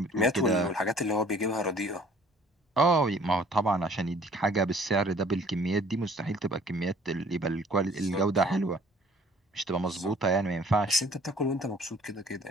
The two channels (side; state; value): both; normal; correlation 0.55